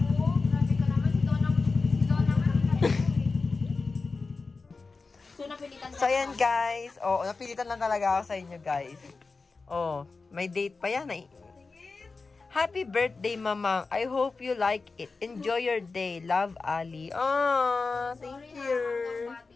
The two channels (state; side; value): quieter; right; 4.1 dB